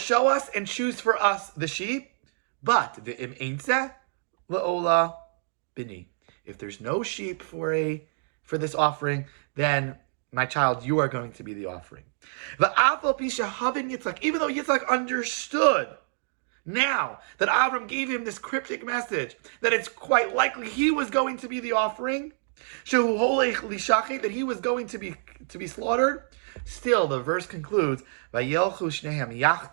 us and choose for us the sheep, but v'im eintzeh le'ola bini. If there's no sheep for this offering, then my child, you are going to be the offering. Even though Yitzchak understood now that Avram gave him this cryptic message, that it's quite likely he was going to be the offering, that he was going to be slaughtered, still the verse concludes, Vayelchu shnehem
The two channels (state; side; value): silent; left; digital silence